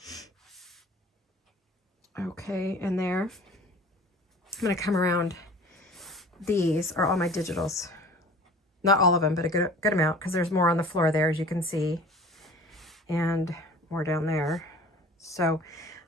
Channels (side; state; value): both; normal; correlation 0.45